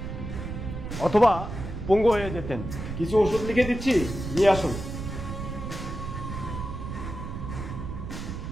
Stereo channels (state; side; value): noise; right; rumble, 7 dB below the sound